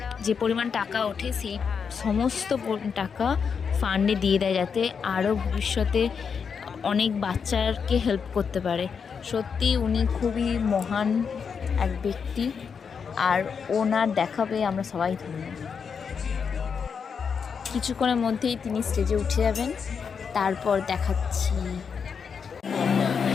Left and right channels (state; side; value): quieter; right; 6.3 dB